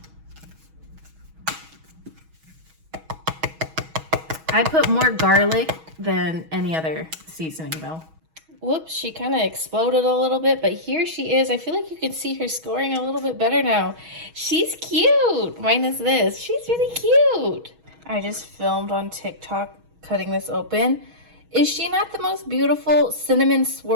I put more garlic than any other seasoning though. Whoops, she kind of exploded a little bit, but here she is. I feel like you can see her scoring a little bit better now. She's cute, minus this. She's really cute. I just filmed on TikTok cutting this open. Is she not the most beautiful cinnamon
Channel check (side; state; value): left; late; 6.3 ms